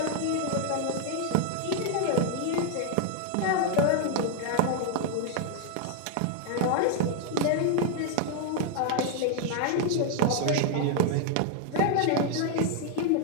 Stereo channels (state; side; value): different; both; correlation 0.00